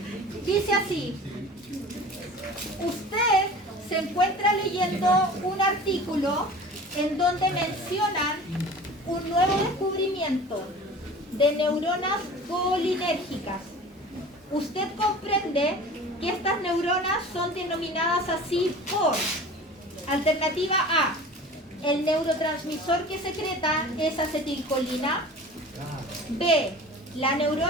Dice así. Usted se encuentra leyendo un artículo en donde mencionan un nuevo descubrimiento de neuronas colinérgicas. Usted comprende que estas neuronas son denominadas así por: alternativa A, el neurotransmisor que secreta es acetilcolina; B, la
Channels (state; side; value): normal; both; correlation 0.40